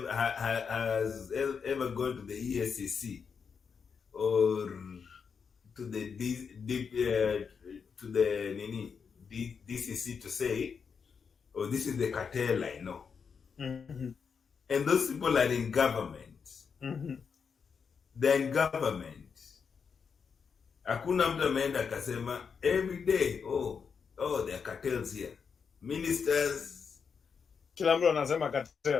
has ever gone to the ESCC or to the DCC to say, oh, this is the cartel I know. Mm-hmm. And those people are in government. Mm-hmm. They're in government. Hakuna mtu ameenda akasema every day, oh, there are cartels here. Ministers. Kila mtu anasema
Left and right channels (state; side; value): quieter; right; 6.1 dB